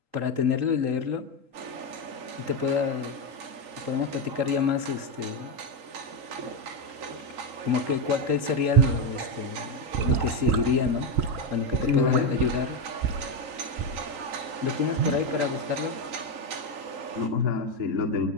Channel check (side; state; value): left; late; 3.7 ms